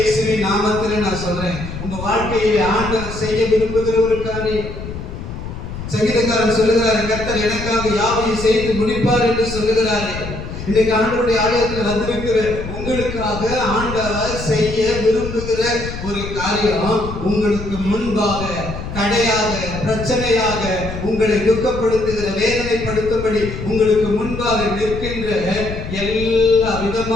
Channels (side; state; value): left; noise; rumble, 8 dB below the sound